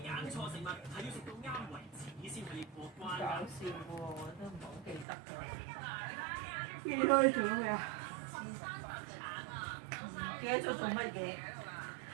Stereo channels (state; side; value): drops out; left; at 5.1 s